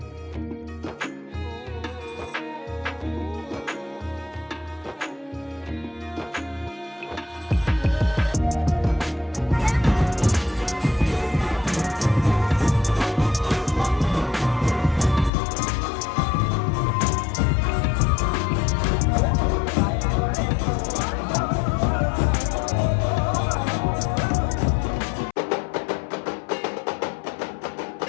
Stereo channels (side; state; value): right; drops out; at 15.3 s